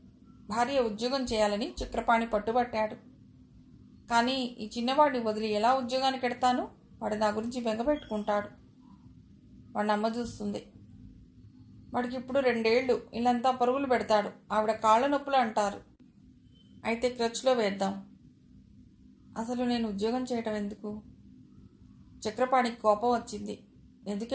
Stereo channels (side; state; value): both; identical; correlation 1.00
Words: భార్య ఉద్యోగం చేయాలని చక్రపాణి పట్టుబట్టాడు. కానీ ఈ చిన్నవాడిని వదిలి ఎలా ఉద్యోగానికి ఎడతాను? వాడు నా గురించి బెంగపెట్టుకుంటాడు. వాడిని అమ్మ చూస్తుంది. వాడికి ఇప్పుడు 2 ఏళ్లు. ఇల్లంతా పరుగులు పెడతాడు. ఆవిడ కాళ్ళ నొప్పులు అంటారు. అయితే క్రచ్లో వేద్దాం. అసలు నేను ఉద్యోగం చేయటం ఎందుకు? చక్రపాణికి కోపం వచ్చింది.